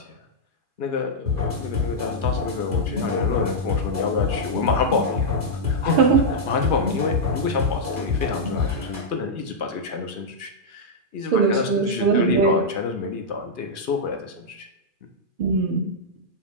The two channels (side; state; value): left; late; 2.4 ms